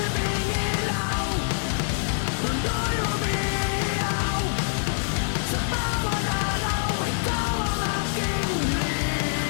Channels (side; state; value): right; silent; digital silence